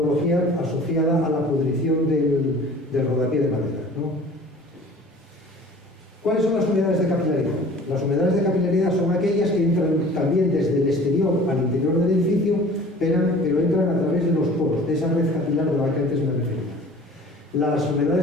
asociada a la pudrición del rodapié de madera, ¿no? ¿Cuáles son las humedades de capilaridad? Las humedades de capilaridad son aquellas que entran también desde el exterior al interior del edificio, pero entran a través de los poros, de esa red capilar de la que antes me refería. Las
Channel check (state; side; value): normal; both; correlation 0.46